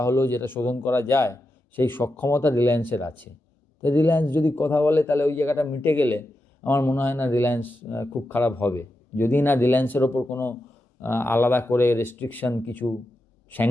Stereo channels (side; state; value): both; normal; correlation 0.88